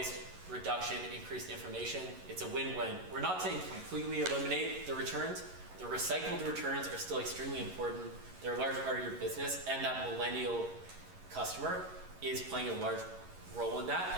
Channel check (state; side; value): late; left; 11 ms